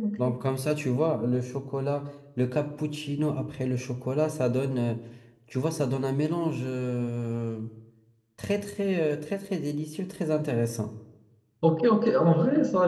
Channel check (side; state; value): both; identical; correlation 1.00